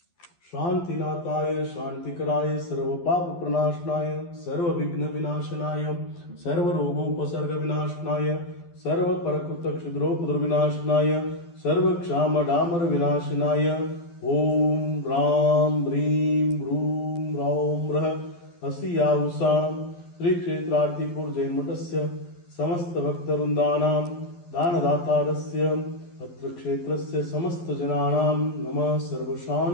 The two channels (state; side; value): late; right; 12 ms